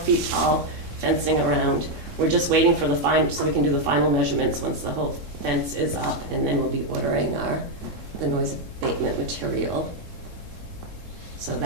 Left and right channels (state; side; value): late; left; 3.7 ms